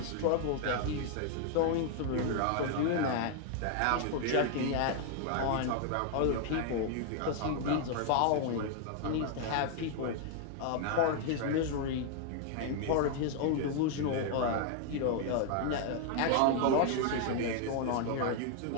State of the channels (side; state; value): both; different; correlation 0.00